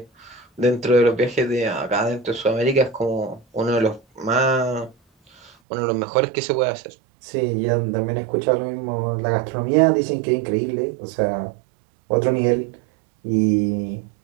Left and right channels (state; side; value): drops out; left; at 5.5 s